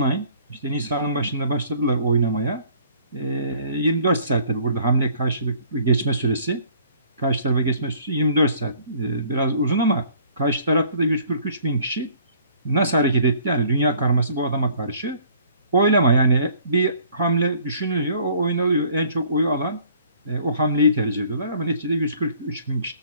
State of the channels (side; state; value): both; inverted; correlation -0.56